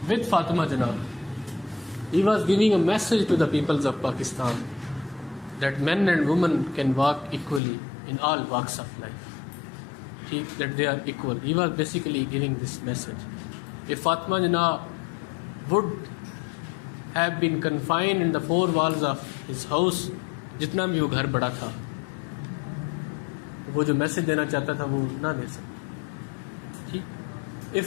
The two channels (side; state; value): right; drops out; at 7.6 s